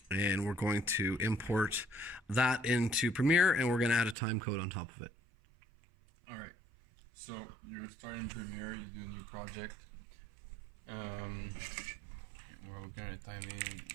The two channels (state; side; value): drops out; left; at 4.2 s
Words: and we're going to import that into Premiere and we're going to add a time code on top of it. Alright, so you're starting Premiere, you do a new project. We're going to